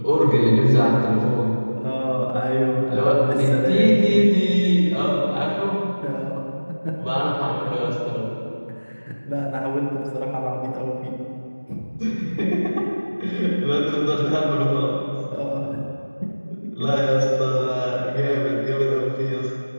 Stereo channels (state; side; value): inverted; both; correlation -1.00